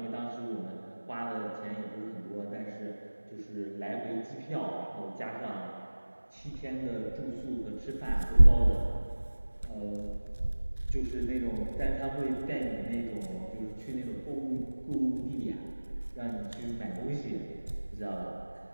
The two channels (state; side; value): inverted; both; correlation -1.00